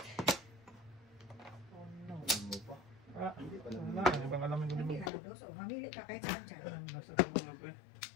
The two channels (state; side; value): drops out; right; at 5.1 s